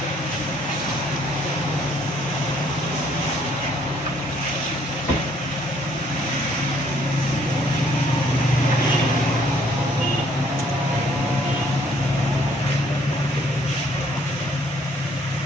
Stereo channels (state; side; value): normal; both; correlation 0.64